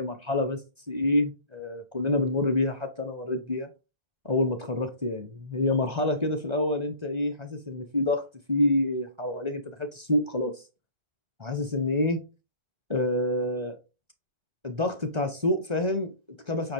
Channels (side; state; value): left; late; 1.3 ms